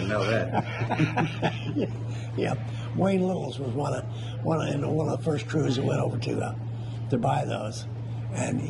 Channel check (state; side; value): identical; both; correlation 1.00